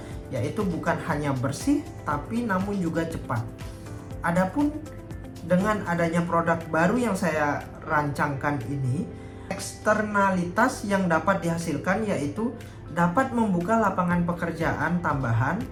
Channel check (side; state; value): both; identical; correlation 1.00